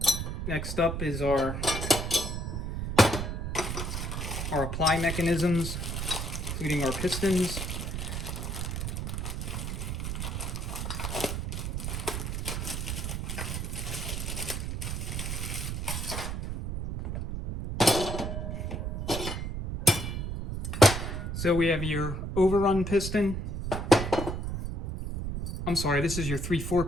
Next up is our apply mechanisms, including our pistons. So we have your overrun piston. I'm sorry, this is your 3/4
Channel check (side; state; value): right; noise; rumble, 3 dB below the sound